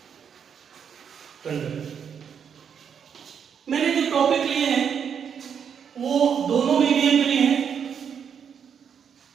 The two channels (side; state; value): left; quieter; 7.5 dB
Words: conductor. मैंने जो टॉपिक लिए हैं वो दोनों मीडियम के लिए हैं,